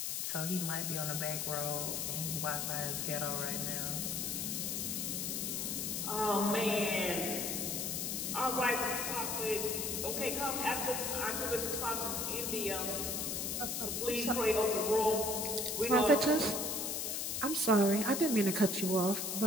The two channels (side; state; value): left; noise; hiss, 1 dB below the sound